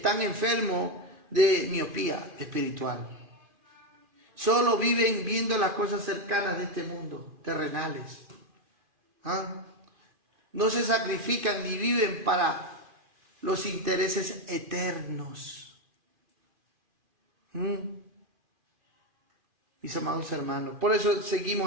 enfermos de miopía espiritual. Solo viven viendo las cosas cercanas de este mundo, terrenales. No se sacrifican ni viven para los intereses eternos. Mis amados hermanos, por eso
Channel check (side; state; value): left; late; 2.4 ms